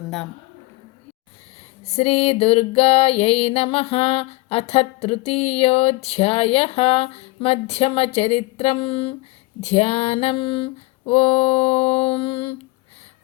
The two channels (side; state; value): right; quieter; 22.7 dB